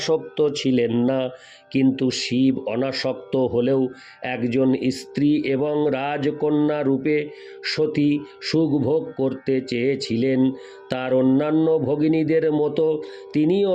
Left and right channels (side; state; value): both; identical; correlation 1.00